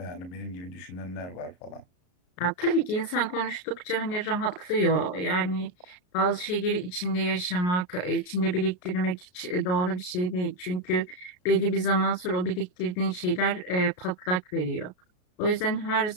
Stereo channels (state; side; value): late; right; 33 ms